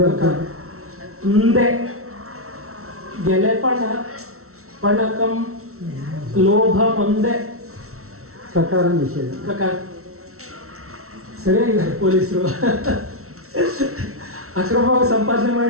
ಮುಂದೆ ಗೆಲೆ ಪಣ ಪಣಕಂ ಲೋಭ ಮುಂದೆ. ಕಕಾರ ನಿಷೇಧ. ಪ್ರಕಾರ. ಸರಿಯಾಗಿದೆ ಪೊಲೀಸರು. ಅಕ್ರಮವಾಗಿ ಸಂಪಾದನೆ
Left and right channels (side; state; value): left; late; 0.63 ms